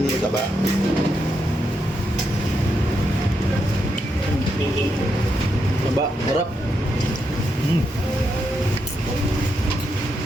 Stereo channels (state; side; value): normal; both; correlation 0.82